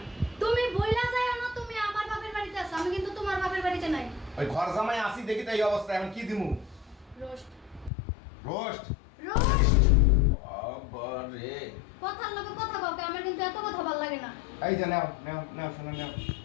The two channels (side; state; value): right; drops out; at 7.9 s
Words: তুমি বইলা যাও না তুমি আমার বাপের বাড়িতে আছো, আমি কিন্তু তোমার বাপের বাড়িতে নাই। ওই ঘর জামাই আসি দেখি তো এই অবস্থা, এখন কি দিমু? রোস্ট রোস্ট রোস্ট বাবারে, কথার লগে কথা কও, আমার কিন্তু এত কথা ভালো লাগে না। এই যে নাও নাও নাও শোনো নাও,